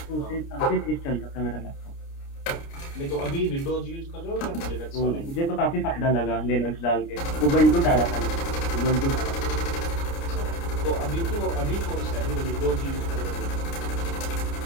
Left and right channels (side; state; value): right; late; 29 ms